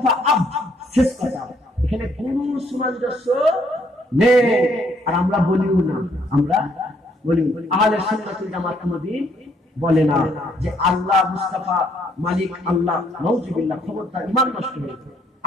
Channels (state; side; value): normal; both; correlation 0.68